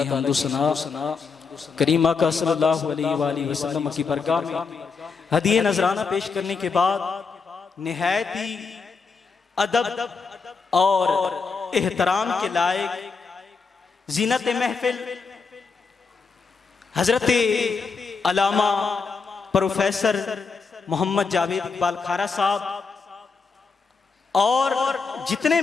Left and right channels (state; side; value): quieter; right; 4.9 dB